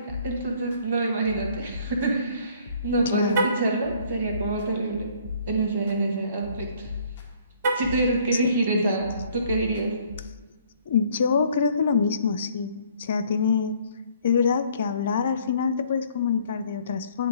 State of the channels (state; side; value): inverted; both; correlation -0.60